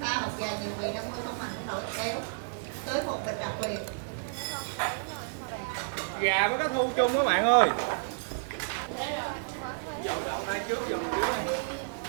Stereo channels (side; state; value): left; silent; 57 dB below the other